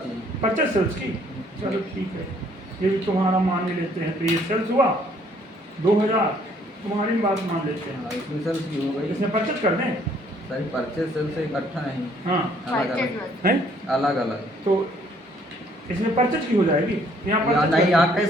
है। परचेज सेल्स की। चलो ठीक है, ये भी तुम्हारा मान लेते हैं, तो ये सेल्स हुआ 2000, तुम्हारी बात मान लेते हैं, हाँ, इसमें सेल्स की हो गई। इसमें परचेज कर दें। सर परचेज सेल्स से इकट्ठा नहीं, हाँ, अलग अलग है, अलग अलग। तो इसमें परचेज की हो जाएगी, यहाँ या परचेज नहीं, कर यहाँ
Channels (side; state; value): both; normal; correlation 0.63